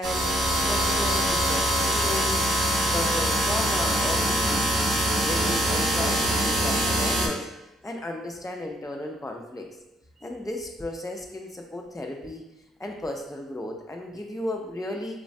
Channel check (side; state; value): both; normal; correlation 0.69